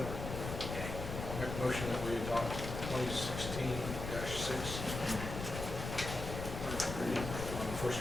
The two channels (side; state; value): left; noise; rumble, 6 dB below the sound